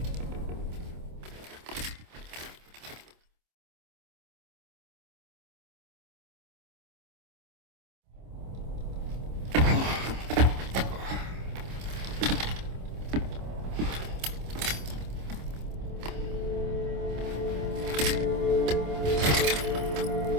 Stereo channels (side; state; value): left; late; 26 ms